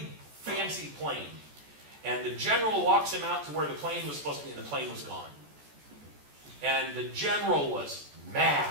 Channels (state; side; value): late; left; 14 ms